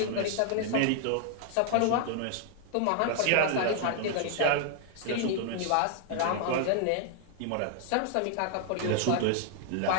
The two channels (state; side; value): different; both; correlation 0.00